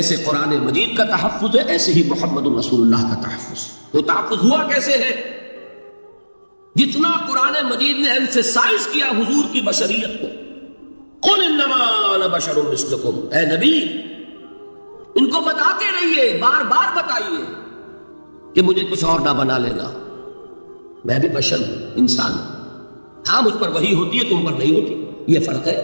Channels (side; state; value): both; inverted; correlation -1.00